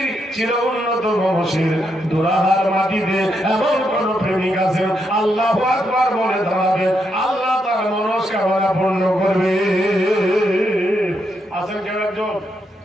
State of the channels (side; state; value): both; normal; correlation 0.80